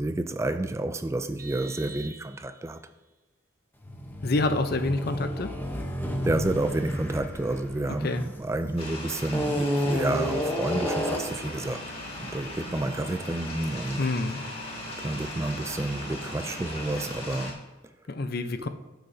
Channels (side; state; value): both; normal; correlation 0.70